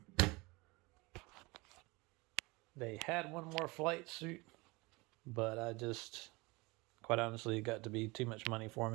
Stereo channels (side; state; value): left; quieter; 24.7 dB